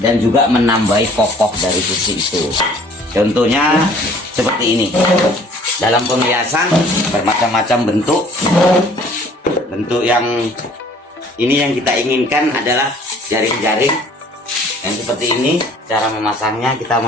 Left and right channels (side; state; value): both; normal; correlation 0.54